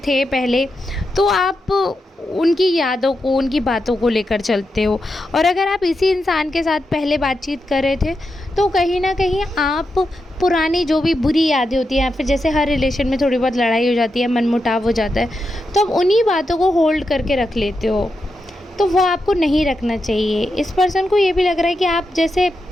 पहले, तो आप उनकी यादों को, उनकी बातों को लेकर चलते हो, और अगर आप इसी इंसान के साथ पहले बातचीत कर रहे थे तो कहीं ना कहीं आप पुरानी जो भी बुरी यादें होती हैं, या फिर जैसे हर रिलेशन में थोड़ी बहुत लड़ाई हो जाती है, मनमुटाव हो जाता है, तो आप उन्हीं बातों को होल्ड करके रख लेते हो। तो वो आपको नहीं रखना चाहिए। इस पर्सन को ये भी लग रहा है कि आप जैसे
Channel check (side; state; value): both; normal; correlation 0.87